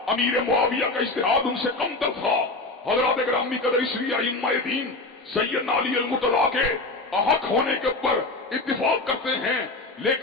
امیر معاویہ کا اجتہاد ان سے کم تر تھا۔ حضرات اگرامی قدر، اس لیے ائمہ دین سیدنا علی المرتضیٰ کے احق ہونے کے اوپر اتفاق کرتے ہیں،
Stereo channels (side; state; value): right; quieter; 3.1 dB